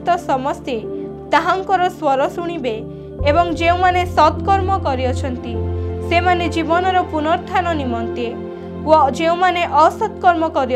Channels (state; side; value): identical; both; correlation 1.00